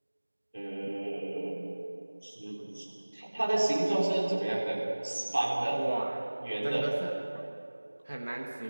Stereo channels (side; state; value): both; inverted; correlation -1.00